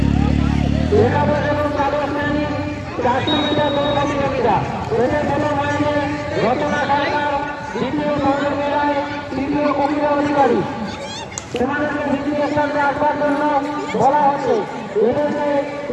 একাদশ এবং দ্বাদশ শ্রেণী 400 মিটার দৌড় প্রতিযোগিতা। এদের প্রথম হয়েছে রচনা সরকার, দ্বিতীয় পৌলমী রায়, তৃতীয় কবিতা অধিকারী। তোমাদেরকে ভিত্তির স্থানে আসবার জন্য বলা হচ্ছে। এদেরকে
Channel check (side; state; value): both; identical; correlation 1.00